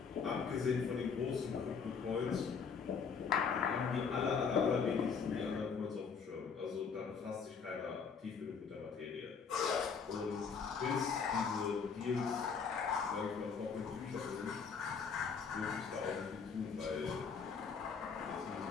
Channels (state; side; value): quieter; right; 5.9 dB